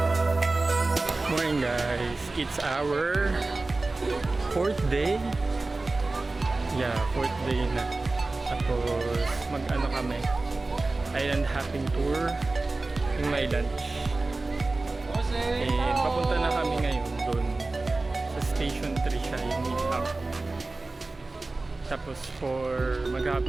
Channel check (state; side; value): quieter; left; 3.3 dB